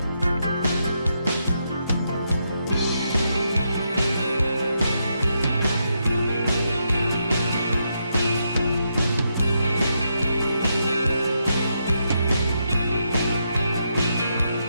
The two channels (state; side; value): inverted; both; correlation -0.81